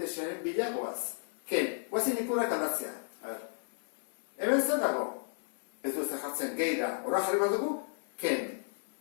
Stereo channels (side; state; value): right; silent; 55 dB below the other